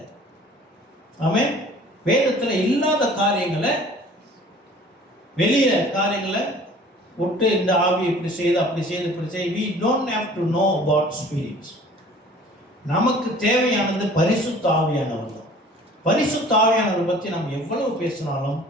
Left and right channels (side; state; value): both; normal; correlation 0.49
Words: ஆமென். வேதத்துல இல்லாத காரியங்களை, வெளியே காரியங்களை விட்டு இந்த ஆவி இப்படி செய்து அப்படி செய்து இப்படி செய்து, we don't have to know about spirits. நமக்கு தேவையானது பரிசுத்த ஆவியானவர் தான். பரிசுத்த ஆவியானவர் பற்றி நம்ம எவ்வளவு பேசினாலும்